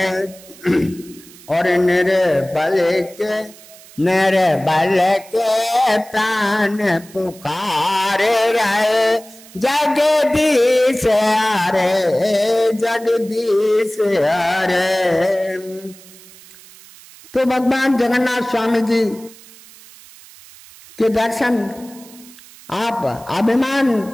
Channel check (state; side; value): noise; right; hiss, 22 dB below the sound